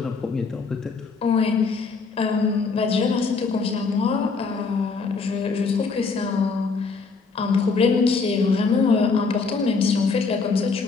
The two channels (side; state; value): right; quieter; 4.6 dB